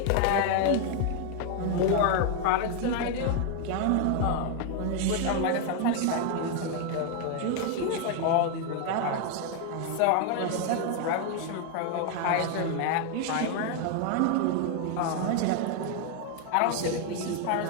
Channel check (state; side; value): different; both; correlation 0.01